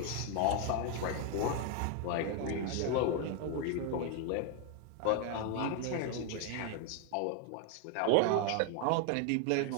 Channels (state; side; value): different; both; correlation 0.00